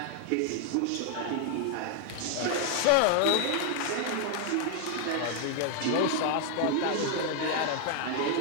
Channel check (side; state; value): both; different; correlation 0.00